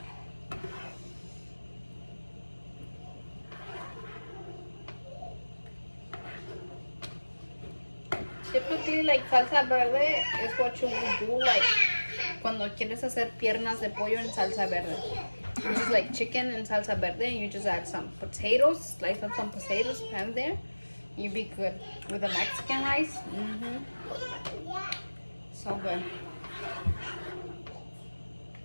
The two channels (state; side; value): inverted; both; correlation -1.00